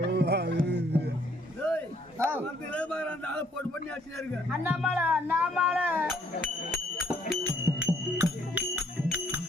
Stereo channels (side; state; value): both; normal; correlation 0.66